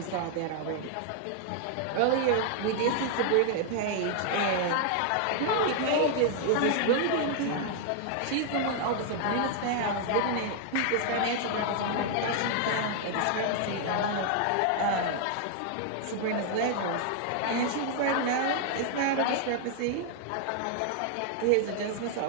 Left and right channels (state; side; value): different; both; correlation 0.00